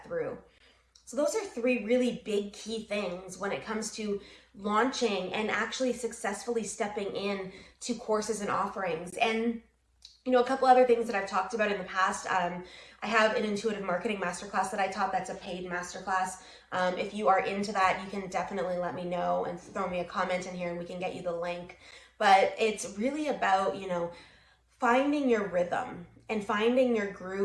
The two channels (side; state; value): both; identical; correlation 1.00